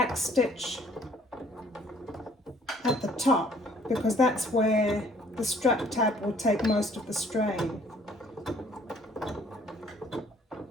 stitch at the top because that's where the strap tab will take most of the strain.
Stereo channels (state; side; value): normal; both; correlation 0.59